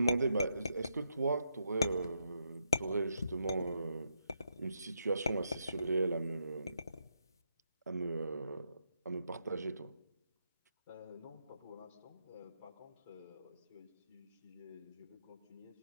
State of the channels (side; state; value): both; inverted; correlation -0.81